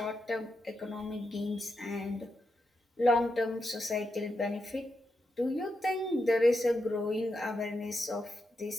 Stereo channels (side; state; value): both; normal; correlation 0.85